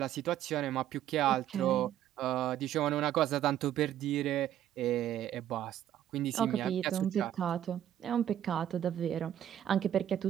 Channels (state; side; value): quieter; left; 11.3 dB